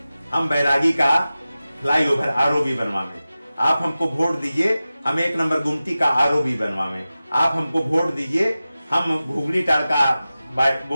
हम बैरागी का फ्लाईओवर आरओबी बनवावें। आप हमको वोट दीजिए, हम 1 नंबर गुमटी का आरओबी बनवावें। आप हमको वोट दीजिए, हम घुगली टार का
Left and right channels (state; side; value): inverted; both; correlation -0.95